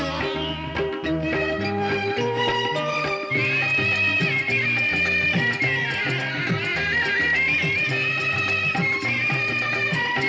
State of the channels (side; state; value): both; identical; correlation 1.00